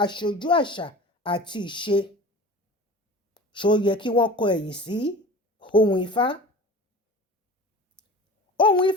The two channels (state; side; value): normal; both; correlation 0.38